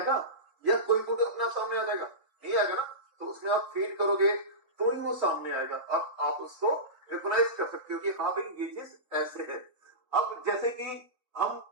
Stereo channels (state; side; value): late; left; 3.5 ms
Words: या कोई फोटो अपने आप सामने आ जाएगा? नहीं आएगा ना। तो उसमें आप फीड करोगे तो ही वो सामने आएगा। अब आप उसको रिकॉग्नाइज कर सकते हो कि हाँ भाई ये चीज ऐसे है। अब जैसे कि हम